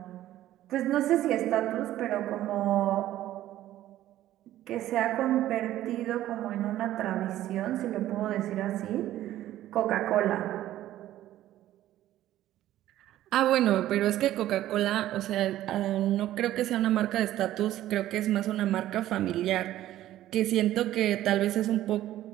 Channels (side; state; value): left; quieter; 13.7 dB